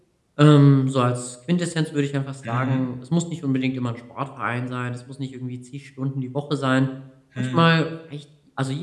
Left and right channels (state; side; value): identical; both; correlation 1.00